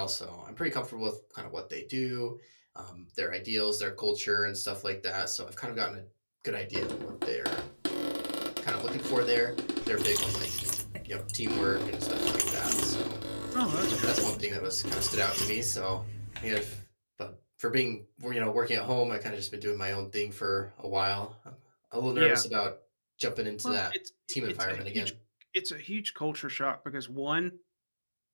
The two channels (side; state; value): both; inverted; correlation -1.00